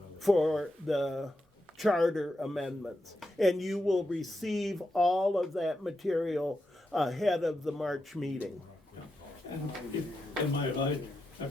for the charter amendments. And you will receive all of that material ahead of the March meeting. And am I right,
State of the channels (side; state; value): both; normal; correlation 0.86